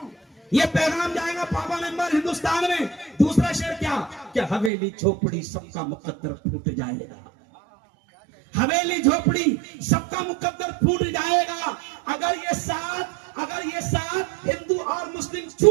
ये पैगाम जाएगा पापा मेंबर हिंदुस्तान में। दूसरा शेर क्या? कि हवेली झोपड़ी सबका मुकद्दर फूट जाएगा। हवेली झोपड़ी सबका मुकद्दर फूट जाएगा अगर ये साथ हिंदू और मुस्लिम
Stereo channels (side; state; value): left; drops out; at 4.7 s